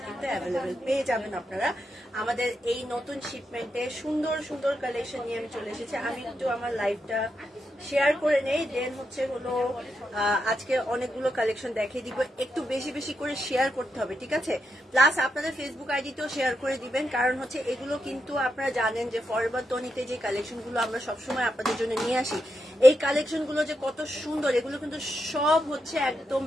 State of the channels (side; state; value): both; normal; correlation 0.84